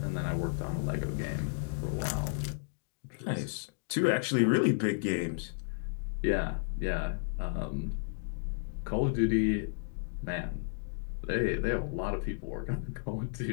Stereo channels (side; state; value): right; silent; digital silence